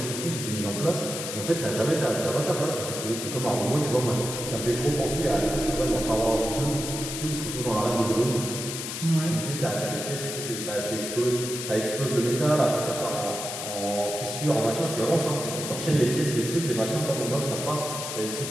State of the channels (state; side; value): noise; left; hiss, 6 dB below the sound